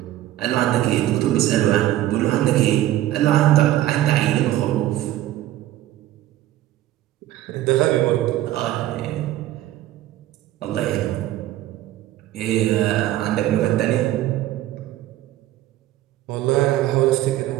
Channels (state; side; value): quieter; left; 14.1 dB